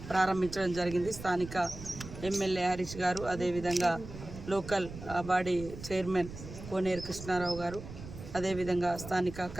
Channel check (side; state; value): right; noise; rumble, 12 dB below the sound